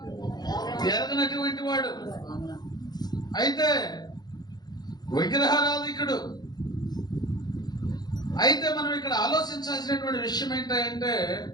ఎరగనటువంటి వాడు. అయితే విగ్రహారాధికుడు. అయితే మనం ఇక్కడ ఆలోచించాల్సినటువంటి విషయం ఏంటంటే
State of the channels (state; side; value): late; right; 0.20 ms